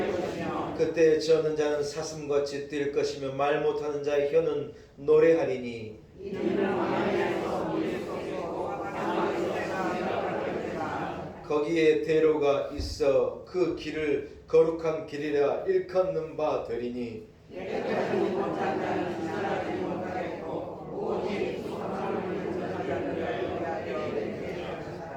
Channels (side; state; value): both; identical; correlation 1.00